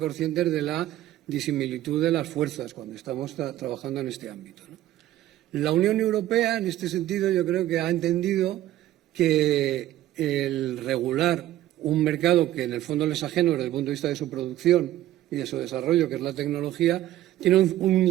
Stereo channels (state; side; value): quieter; left; 13.9 dB